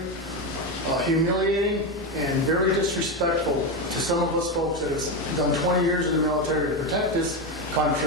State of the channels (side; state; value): both; normal; correlation 0.13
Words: humiliating and very disrespectful to some of us folks that have done 20 years in the military to protect this